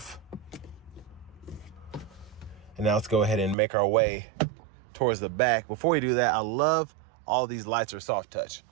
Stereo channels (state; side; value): drops out; left; at 3.6 s